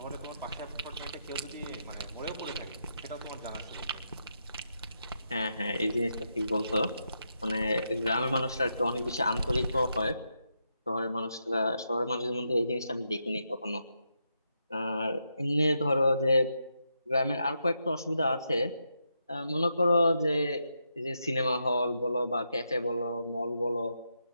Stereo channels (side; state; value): both; inverted; correlation -0.83